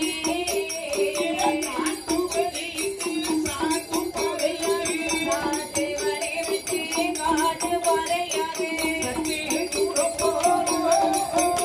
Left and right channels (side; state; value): both; identical; correlation 1.00